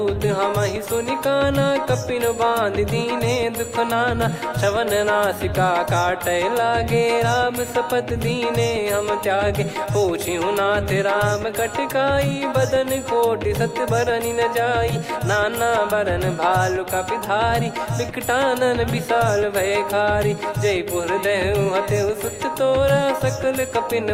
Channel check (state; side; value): identical; both; correlation 1.00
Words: हमहि सुनि काना कपिन बांध दीने दुख नाना। श्रवण नासिका काटे लागे राम शपथ दीने हम त्यागे। पूछिहु नाथ राम कटकाई बदन कोटि सत बरनि न जाई। नाना बरन भालु कपिधारी विकटानन विशाल भयकारी। जयपुर देहु हतेउ सुत तोरा सकल कपिन